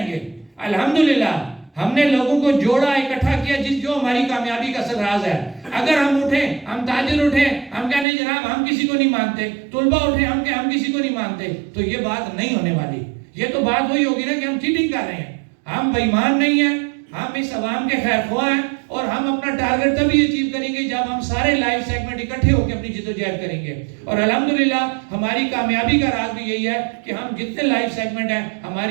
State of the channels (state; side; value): drops out; left; at 8.1 s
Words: گے۔ الحمدللہ ہم نے لوگوں کو جوڑا، اکٹھا کیا، جو ہماری کامیابی کا راز ہے۔ اگر ہم اٹھیں، ہم تاجر اٹھیں، ہم کہیں نہیں جناب ہم کسی کو نہیں مانتے، طلباء اٹھیں، ہم کسی کو نہیں مانتے، تو یہ بات نہیں ہونے والی۔ یہ تو بات وہی ہوگی نا کہ ہم چیٹنگ کر رہے ہیں، ہم بے ایمان نہیں ہیں، ہم اس عوام کے خیر خواہ ہیں اور ہم اپنا ٹارگٹ تبھی اچیو کریں گے جب ہم سارے لائف سیگمنٹ اکٹھے ہو کے اپنی جدوجہد کریں گے۔ اور الحمدللہ ہماری کامیابی کا راز بھی یہی ہے کہ ہم جتنے لائف سیگمنٹ ہیں،